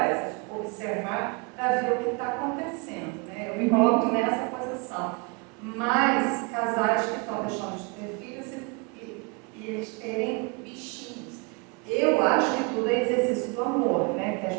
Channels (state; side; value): quieter; left; 30.7 dB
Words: observar para ver o que está acontecendo, né? Eu me coloco nessa posição. Mas casais que estão deixando de ter filhos e eles terem bichinhos. Eu acho que tudo é exercício do amor, né? Que às